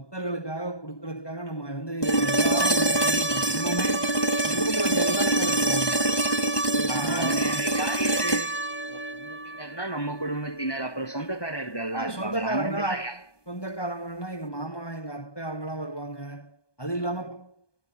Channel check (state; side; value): late; right; 1.2 ms